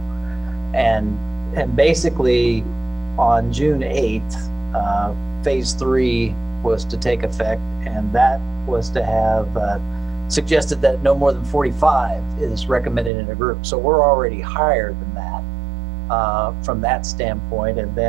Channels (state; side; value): drops out; left; at 13.1 s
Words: And basically on June 8th, phase 3 was to take effect, and that was to have suggested that no more than 45 is recommended in a group. So we're already higher than that from that standpoint. And